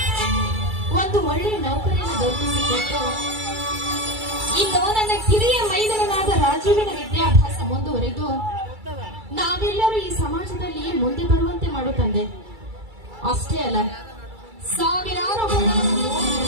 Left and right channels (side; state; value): left; late; 2.3 ms